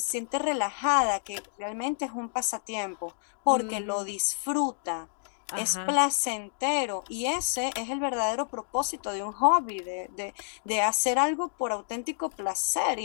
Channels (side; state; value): right; silent; digital silence